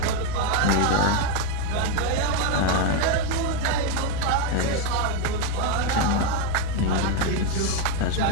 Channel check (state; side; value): different; both; correlation 0.02